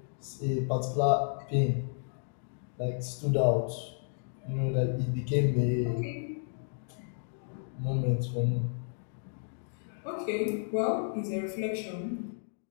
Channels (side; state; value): right; silent; digital silence